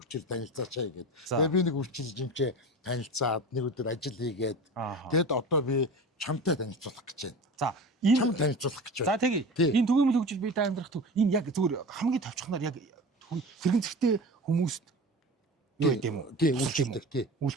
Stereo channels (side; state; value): both; normal; correlation 0.33